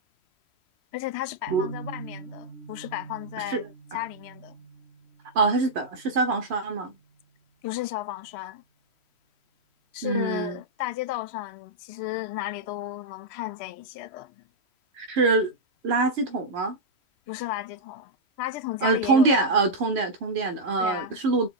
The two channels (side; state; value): left; late; 3.1 ms